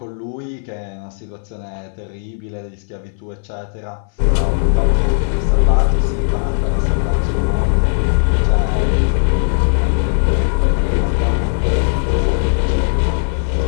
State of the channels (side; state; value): right; silent; 61 dB below the other